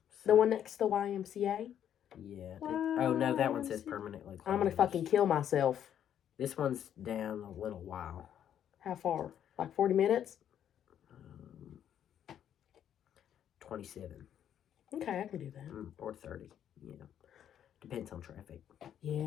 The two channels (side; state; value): right; quieter; 9.8 dB